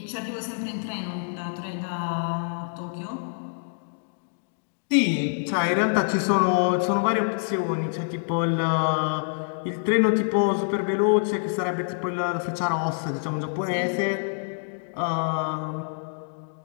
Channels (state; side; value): silent; right; digital silence